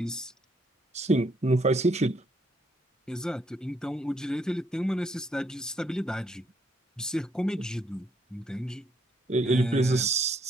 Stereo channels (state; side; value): normal; both; correlation 0.70